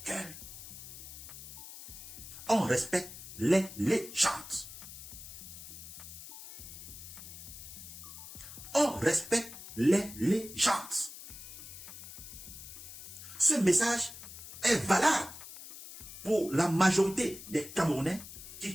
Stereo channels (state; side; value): noise; left; hiss, 13 dB below the sound